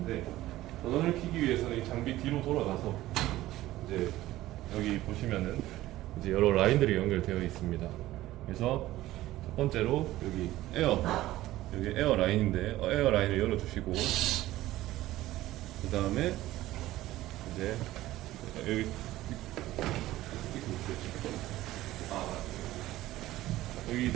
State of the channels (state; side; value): quieter; left; 15.8 dB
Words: 전원을 켜기 위해서는 이 장비 뒤로 돌아가서 이제 여기 보시면은 이제 여러 라인들이 연결되어 있습니다. 그래서 첫 번째로 여기 에어 라인인데 에어 라인을 열어주시고, 그 다음에 이제 여기